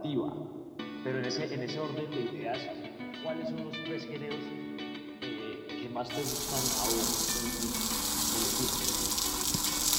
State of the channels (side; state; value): both; identical; correlation 1.00